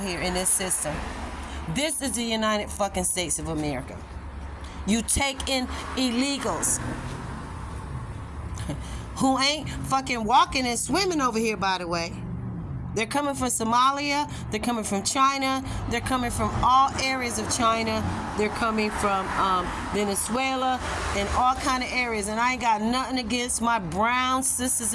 here in this system. This is the United fucking States of America. You take in illegals who ain't fucking walking and swimming over here, by the way. They're coming from Somalia. They're coming from China. They're coming from all areas of China. They're coming from Venezuela and all kind of areas. And I ain't got nothing against my brown sisters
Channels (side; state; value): both; identical; correlation 1.00